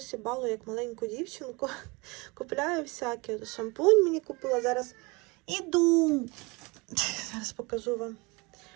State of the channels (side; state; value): left; quieter; 26.5 dB